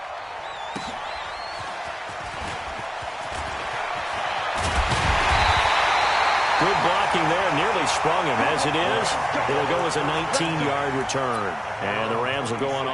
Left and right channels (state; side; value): identical; both; correlation 1.00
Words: Good blocking there, nearly sprung him. As it is, it'll go as a 19-yard return. And the Rams will go on